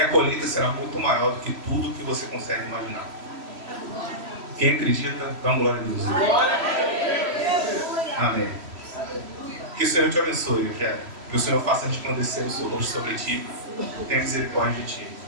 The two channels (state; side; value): late; left; 3.1 ms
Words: colheita será muito maior do que tudo que você consegue imaginar. Quem acredita, dá uma glória a Deus. Amém. Que o Senhor te abençoe, Eugênio. Que o Senhor faça resplandecer o seu rosto sobre ti, tenha misericórdia de ti.